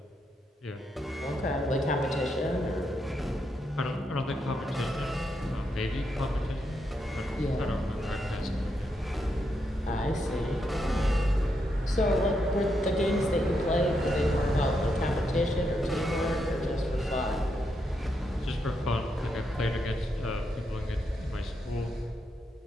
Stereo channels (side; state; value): both; normal; correlation 0.81